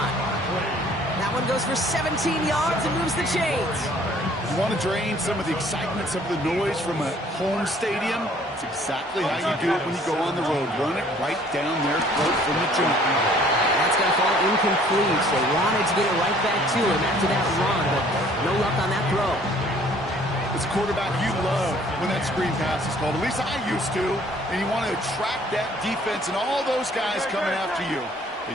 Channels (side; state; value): both; normal; correlation 0.57